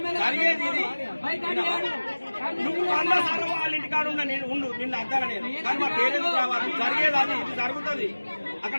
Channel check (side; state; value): both; inverted; correlation -1.00